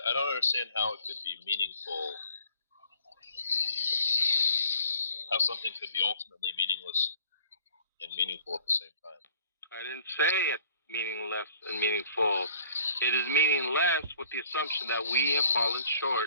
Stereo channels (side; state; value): both; inverted; correlation -0.55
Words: don't understand how it could be meaningful. How something could be ultimately meaningless and meaningful at the same time. I didn't say it meaningless and meaningful. It is meaningless with the assumption that we have fallen